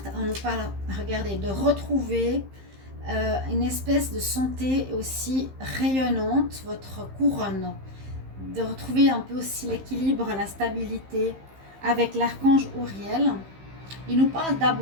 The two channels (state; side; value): late; left; 15 ms